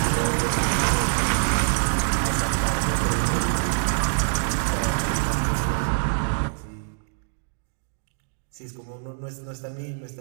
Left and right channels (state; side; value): silent; left; digital silence